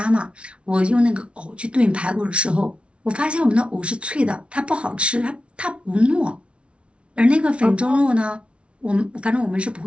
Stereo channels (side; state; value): left; late; 0.060 ms